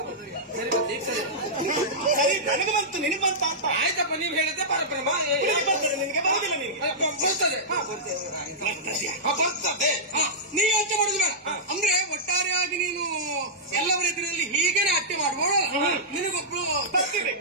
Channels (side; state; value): both; normal; correlation -0.13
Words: ಸರಿ ನನಗೆ ಬಂತು ನಿನಗೆ ಬಂತ ಅಂತ ಆಯ್ತಪ್ಪ. ನೀವು ಹೇಳಿದ್ದೆ ಪರಬ್ರಹ್ಮ ಬರ್ತದೆ ನಿನಗೆ ಬರುದಿಲ್ಲ. ನಿನಗೆ ಬರ್ತದೆ. ನೀವು ಯೋಚನೆ ಮಾಡುದು ಬೇಡ. ಅಂದ್ರೆ ಒಟ್ಟಾರೆಯಾಗಿ ನೀನು ಎಲ್ಲವರ ಎದುರಲ್ಲಿ ಹೀಗೇನೆ ಅಟ್ಟೆ ಮಾಡುವಳು. ನಿನಗೊಬ್ರು ಬರ್ತಿದೆ